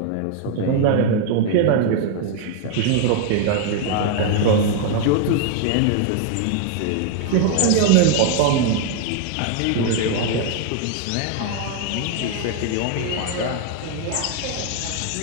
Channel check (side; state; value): both; different; correlation 0.00